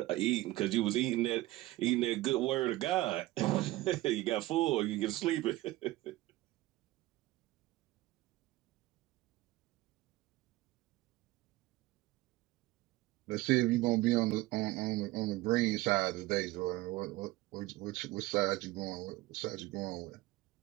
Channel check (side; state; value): left; quieter; 18.0 dB